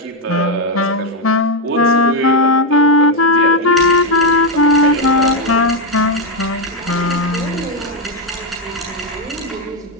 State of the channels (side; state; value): both; normal; correlation 0.04